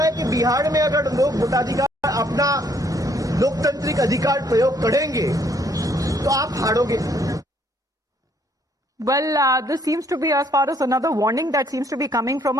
है कि बिहार में अगर लोग वोटाधिकार, अपना लोकतांत्रिक अधिकार प्रयोग करेंगे तो आप हारोगे। Well, this seems to be, as far as another warning that seems to be coming from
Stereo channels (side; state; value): both; normal; correlation 0.66